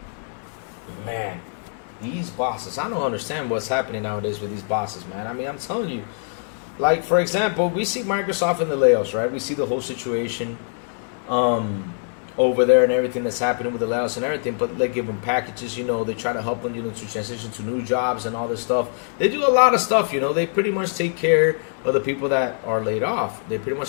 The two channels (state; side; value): silent; right; digital silence